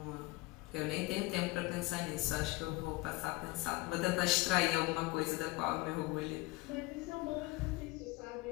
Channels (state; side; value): quieter; right; 21.9 dB